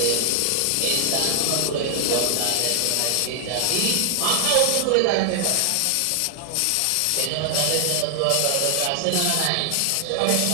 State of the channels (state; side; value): different; both; correlation 0.00